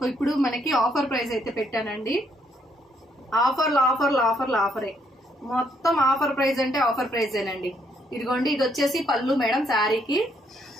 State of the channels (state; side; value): normal; both; correlation 0.72